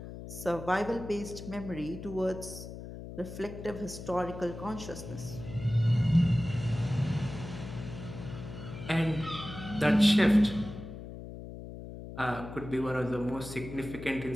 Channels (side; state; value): left; noise; hum, 11 dB below the sound